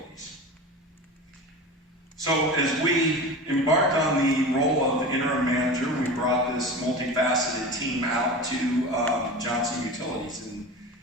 So as we embarked on the role of interim manager, we brought this multifaceted team out to Johnson Utilities.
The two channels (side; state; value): both; normal; correlation 0.31